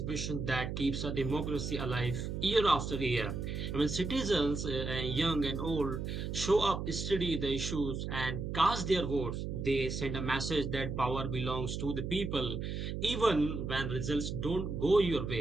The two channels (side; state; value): right; noise; hum, 4 dB below the sound